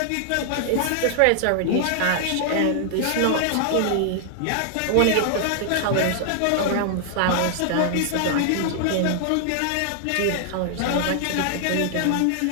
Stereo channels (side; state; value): both; different; correlation 0.00